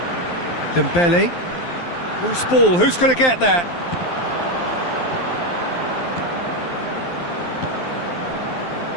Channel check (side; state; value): right; late; 12 ms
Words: Dembele. Loose ball, who's going to get that?